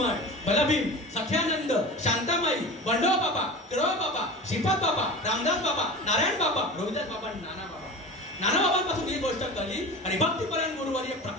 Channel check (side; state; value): both; normal; correlation 0.33